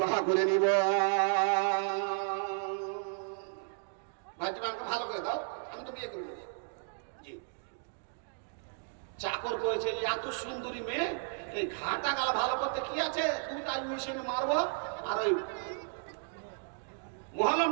করে নিব। ভাই তুমি আমাকে ভালো করে দাও, আমি তো বিয়ে করে নেব। জি। চাকর করেছে এত সুন্দরী মেয়ে, এই ঘাটা গালা ভালো করতে কি আছে, তুমি তাই মেশিনে মারবো আর ওই মহলম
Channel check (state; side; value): silent; left; digital silence